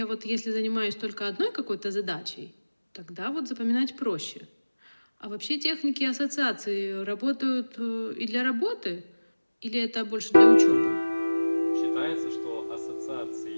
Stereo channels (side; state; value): both; inverted; correlation -1.00